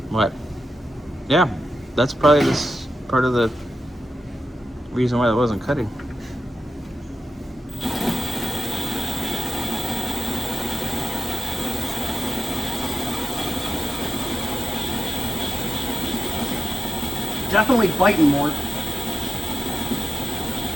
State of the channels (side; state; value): both; normal; correlation 0.91